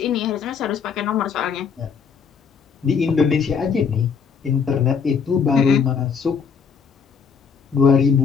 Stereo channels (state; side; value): quieter; right; 6.3 dB